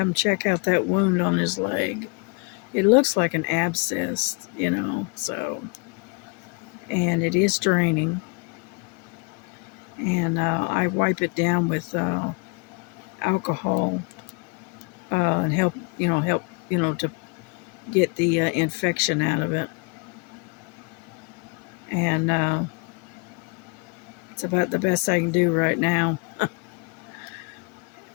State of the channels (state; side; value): quieter; right; 31.8 dB